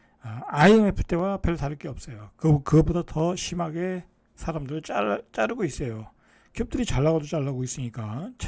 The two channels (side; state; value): both; identical; correlation 1.00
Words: IMF 때와 별 다를 게 없어요. 그거보다 더 심하게 사람들 자르고 있어요. 기업들이 잘 나가도 잘 나가고 있으니까